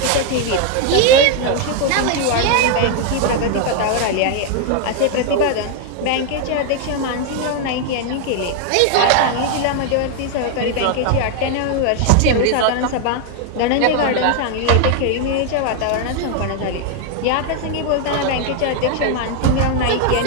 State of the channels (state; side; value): different; both; correlation 0.00